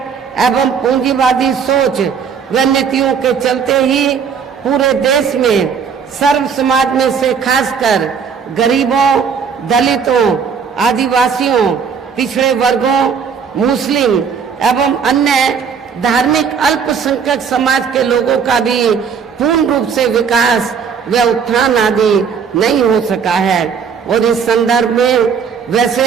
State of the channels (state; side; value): quieter; left; 6.6 dB